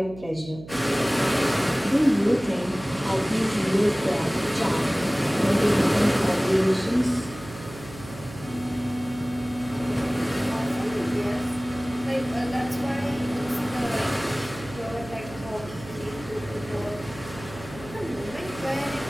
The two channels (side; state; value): right; noise; hum, 15 dB below the sound